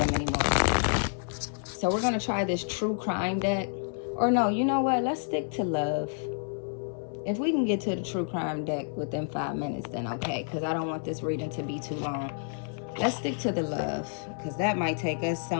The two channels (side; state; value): right; silent; 57 dB below the other